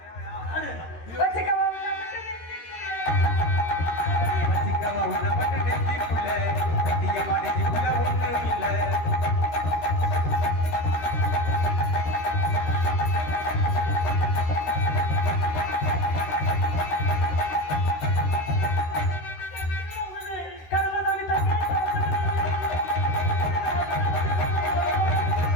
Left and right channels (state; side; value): late; right; 13 ms